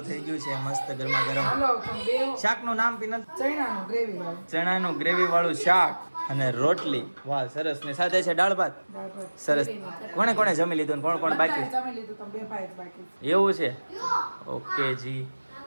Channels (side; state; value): both; inverted; correlation -1.00